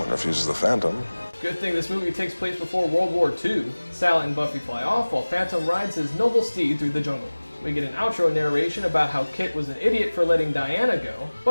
refuses the Phantom. Good thing this movie takes place before World War II. Sally and Buffy fly off while Phantom rides his noble steed through the jungle. We get an outro narration about how Kit was an idiot for letting Diana go,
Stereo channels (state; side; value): inverted; both; correlation -1.00